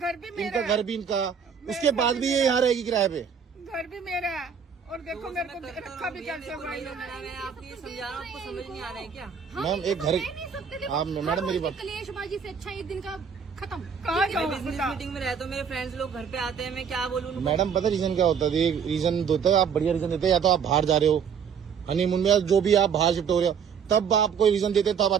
भी मेरा इनका घर भी इनका, उसके बाद भी ये यहाँ रहेगी किराए पे। घर भी मेरा है। और देखो मेरे को रखा भी कैसे हुआ मैं इन्होंने। आपको ये समझा रहा हूँ, आपको समझ नहीं आ रहा है क्या? मैम एक घर, आप मैडम मेरी बात, कलेशबाजी से अच्छा एक दिन का खत्म। कहाँ मैं जाऊँ बिजनेस बता। मीटिंग में रहता हूँ, मेरे फ्रेंड्स लोग घर पे आते हैं, मैं क्या बोलूँ उनको? मैडम पता रीजन क्या होता है? ये रीजन होता है, आप बढ़िया रीजन देते हैं, या तो आप बाहर जा रहे हो हनीमून में, जो भी आप बाहर शिफ्ट हो रहे हो, तब आप कोई रीजन देते तब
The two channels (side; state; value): left; quieter; 7.0 dB